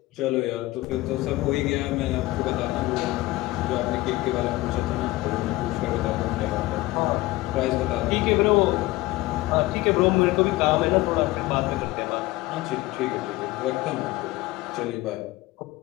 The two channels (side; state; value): right; quieter; 18.9 dB